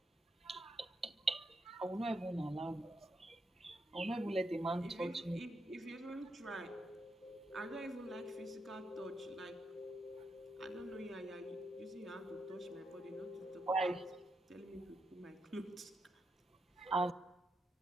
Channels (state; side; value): normal; both; correlation 0.82